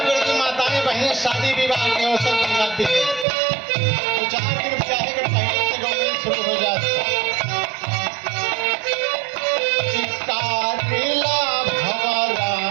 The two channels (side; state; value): left; drops out; at 3.2 s